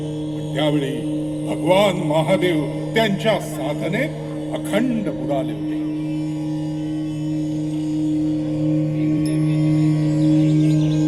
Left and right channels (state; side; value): noise; right; rumble, 22 dB below the sound